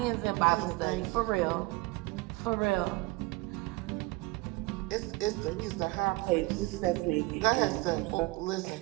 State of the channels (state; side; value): quieter; left; 22.8 dB